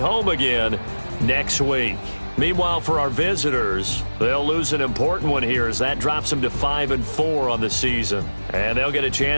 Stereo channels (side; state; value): both; inverted; correlation -1.00